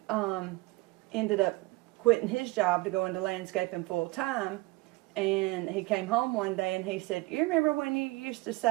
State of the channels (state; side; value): quieter; left; 22.4 dB